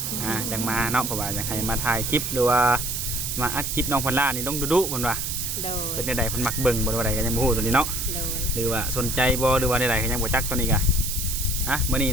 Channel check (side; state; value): right; noise; hiss, 3 dB below the sound